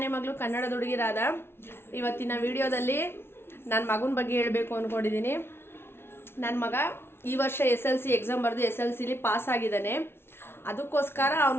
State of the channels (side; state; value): right; late; 0.12 ms